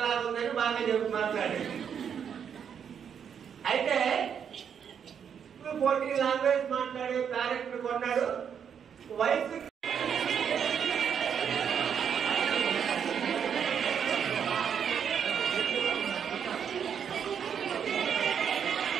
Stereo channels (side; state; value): left; quieter; 7.8 dB